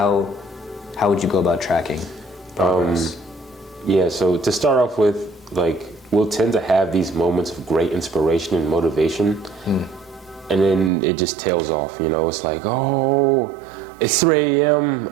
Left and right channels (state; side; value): drops out; left; at 10.9 s